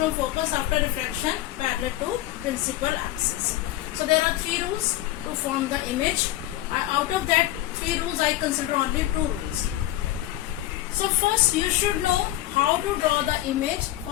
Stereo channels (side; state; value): right; quieter; 14.9 dB